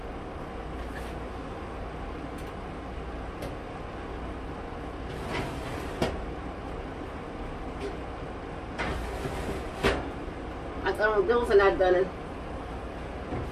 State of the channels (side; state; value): both; identical; correlation 1.00